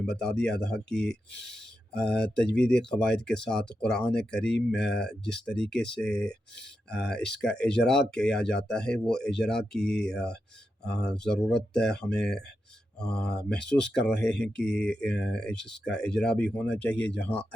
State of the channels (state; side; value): normal; both; correlation 0.87